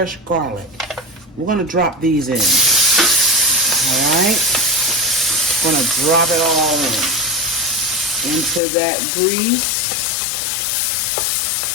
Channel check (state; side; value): drops out; right; at 8.6 s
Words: garlic. We're going to drop these in. All right? I'm going to drop it all in into that grease.